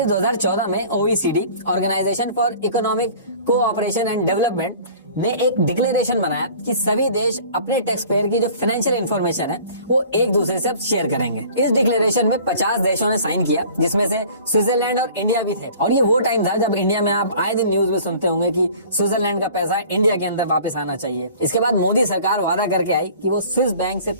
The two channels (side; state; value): both; inverted; correlation -0.47